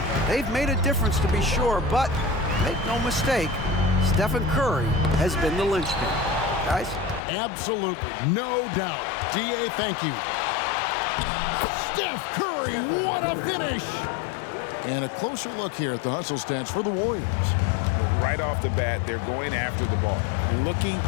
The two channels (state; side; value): drops out; right; at 7.2 s